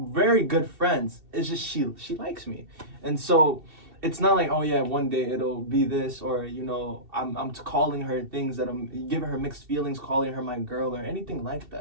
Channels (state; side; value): late; left; 2.7 ms